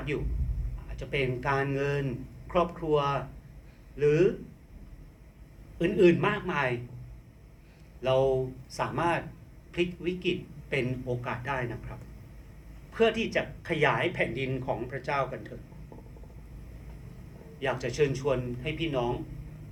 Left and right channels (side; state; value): both; identical; correlation 1.00